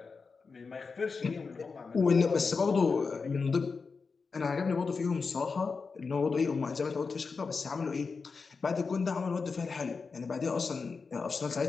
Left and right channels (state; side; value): quieter; right; 4.8 dB